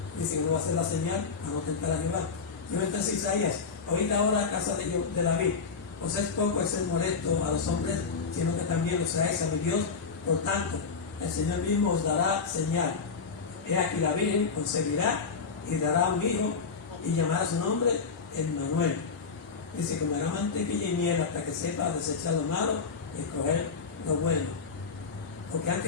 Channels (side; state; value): right; quieter; 5.2 dB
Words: dice que no va a hacer la señal para no tentar a Jehová. Yo entonces Isaías, oíd ahora a casa de David, os es poco el ser molesto a los hombres, sino que también lo seáis a mi Dios. Por tanto, el Señor mismo os dará señal. He aquí la Virgen concebirá y dará un hijo y llamará su nombre Emmanuel. Dice, comerá mantequilla y miel hasta que sepa desechar lo malo y escoger lo bueno. Porque